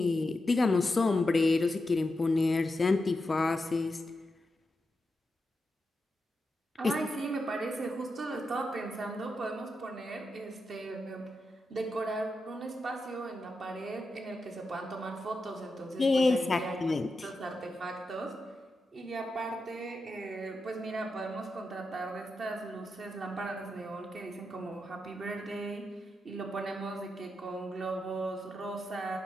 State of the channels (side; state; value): both; normal; correlation 0.88